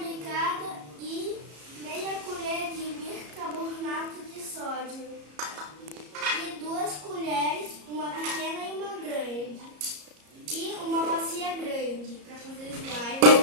e meia colher de bicarbonato de sódio. E 2 colheres, uma pequena e uma grande. E uma bacia grande para fazer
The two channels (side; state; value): left; late; 34 ms